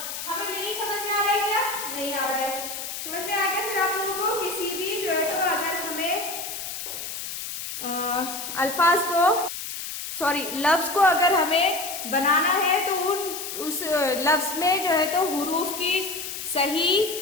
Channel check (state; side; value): noise; left; hiss, 7 dB below the sound